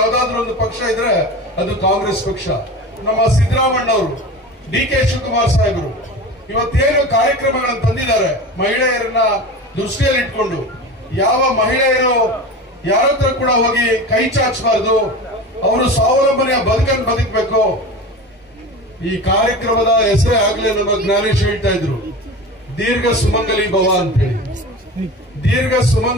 ಒಂದು ಪಕ್ಷ ಇದ್ರೆ ಅದು ಕಾಂಗ್ರೆಸ್ ಪಕ್ಷ. ನಮ್ಮ ಸಿದ್ದರಾಮಣ್ಣವರು, ಡಿ.ಕೆ. ಶಿವಕುಮಾರ್ ಸಾಹೇಬರು ಇವತ್ತೇನು ಕಾರ್ಯಕ್ರಮಗಳನ್ನು ತಂದಿದ್ದಾರೆ ಮಹಿಳೆಯರನ್ನ ದೃಷ್ಟಿಯಲ್ಲಿ ಇಟ್ಕೊಂಡು, ಯಾವ ಮಹಿಳೆಯರು ಯಾರ ಹತ್ರ ಕೂಡ ಹೋಗಿ ಕೈ ಚಾಚಬಾರದು, ಅವರು ಸ್ವಾವಲಂಬನೆಯ ಬದುಕನ್ನು ಬದುಕಬೇಕು. ಈ ಕಾರ್ಯಕ್ರಮದ ಹೆಸರೇ ಆಗ್ಲೇ ನಮ್ಮ ಜ್ಞಾನೇಶ್ ಹೇಳ್ತಾ ಇದ್ರು, ದೀರ್ಘ ಸುಮಂಗಲಿ ಭವ ಅಂತೇಳಿ. ದೀರ್ಘ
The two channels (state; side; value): normal; both; correlation 0.31